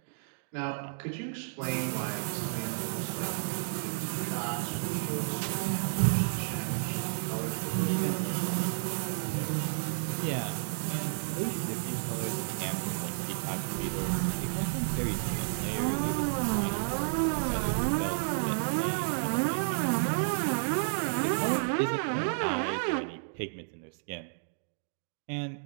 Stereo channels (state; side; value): silent; left; digital silence